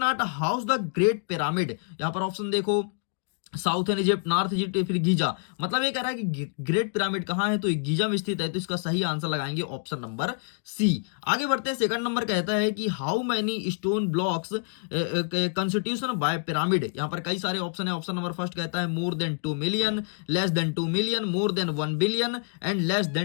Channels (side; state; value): right; silent; 60 dB below the other